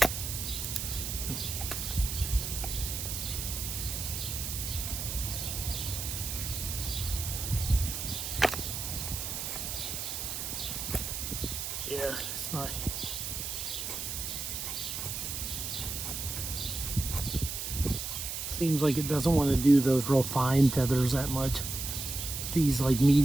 Yeah, it's not. Seems like it doesn't want to do those real fine feathers that much. These like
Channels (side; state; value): right; noise; hiss, 4 dB below the sound